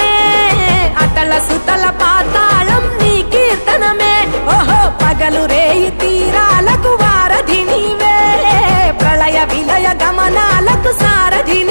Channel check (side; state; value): both; inverted; correlation -1.00